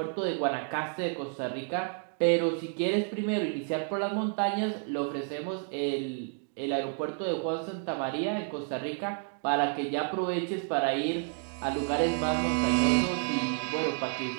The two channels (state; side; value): silent; left; 56 dB below the other